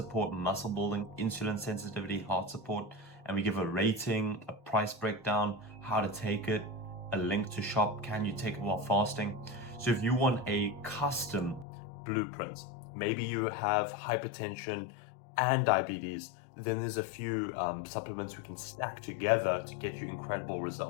muscle building, insulin sensitivity, heart support. And we give a rating, a price breakdown, how to take it, a link to shop, can you take it while fasting? So if you want a custom blueprint, maybe you have hypertension and diabetes, then there's a few supplements we can stack together to get you incredible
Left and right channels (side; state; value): right; drops out; at 11.7 s